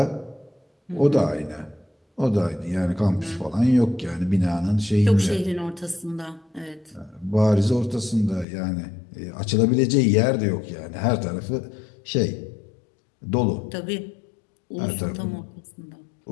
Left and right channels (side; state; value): right; drops out; at 8.5 s